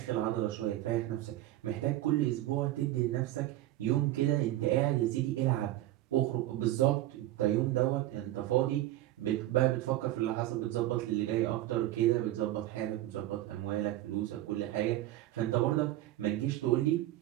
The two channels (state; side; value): quieter; left; 15.1 dB